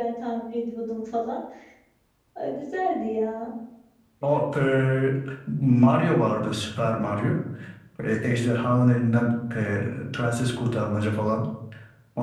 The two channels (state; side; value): identical; both; correlation 1.00